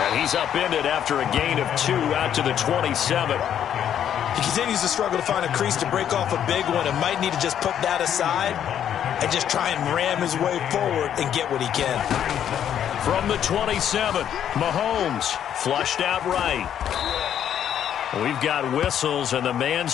he's upended after a gain of 2 out to the 27. He continues to struggle to find a crease to break off a big one and might need to just put that aside and just try and ram his way forward and get what he can. From the 27, Mahomes flushed out right. We've got whistles, and the man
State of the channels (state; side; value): quieter; right; 9.7 dB